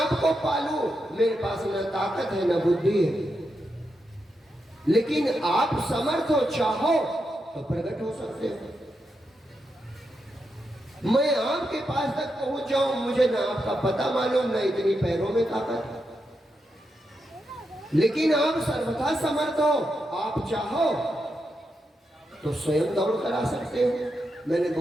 पालू, मेरे पास न ताकत है न बुद्धि है, लेकिन आप समर्थ हो, चाहो तो प्रकट हो सकते हो। मैं आपके पास तक पहुंच जाऊं, मुझे ना आपका पता मालूम, ना इतनी पैरों में ताकत, लेकिन आप सर्वथा समर्थ हो। आप चाहो तो स्वयं दौड़ कर आ सकते हो। मैंने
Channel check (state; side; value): normal; both; correlation 0.85